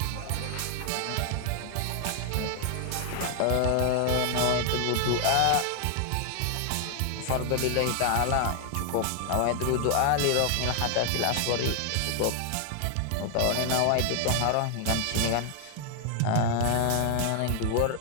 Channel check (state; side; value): different; both; correlation 0.00